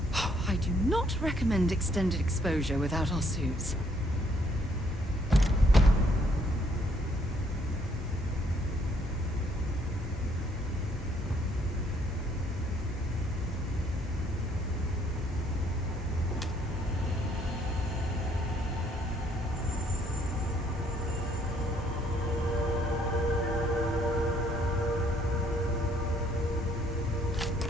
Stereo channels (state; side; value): normal; both; correlation 0.67